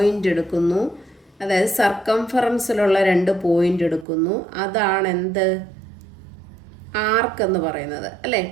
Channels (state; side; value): drops out; left; at 4.0 s